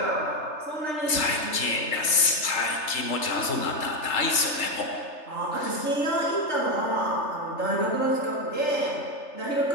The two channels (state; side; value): late; right; 3.3 ms